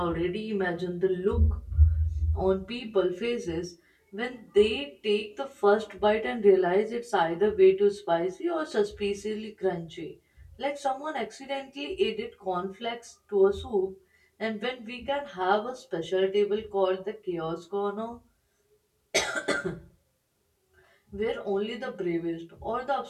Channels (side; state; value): both; identical; correlation 1.00